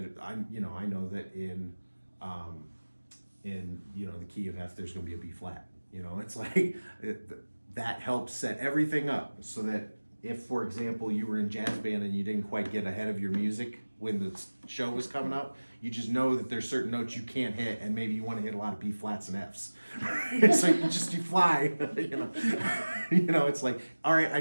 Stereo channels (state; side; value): inverted; both; correlation -1.00